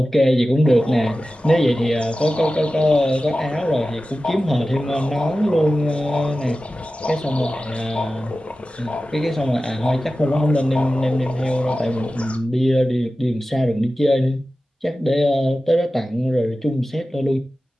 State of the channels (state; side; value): normal; both; correlation 0.95